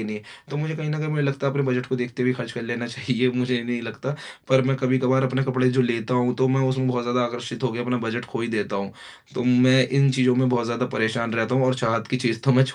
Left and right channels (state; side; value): identical; both; correlation 1.00